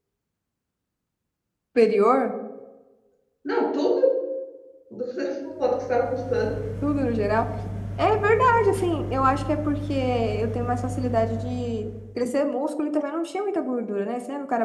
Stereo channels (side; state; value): both; identical; correlation 1.00